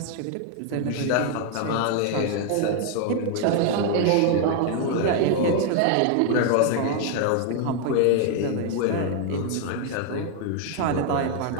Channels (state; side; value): different; both; correlation 0.00